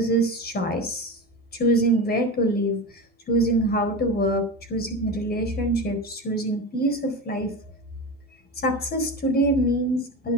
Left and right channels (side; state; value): both; normal; correlation 0.25